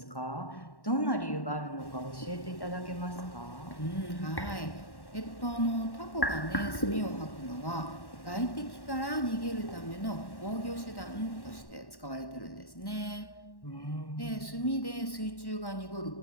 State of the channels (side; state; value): right; late; 1.1 ms